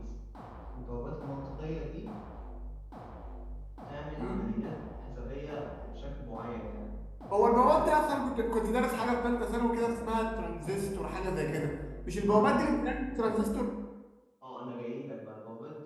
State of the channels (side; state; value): both; identical; correlation 1.00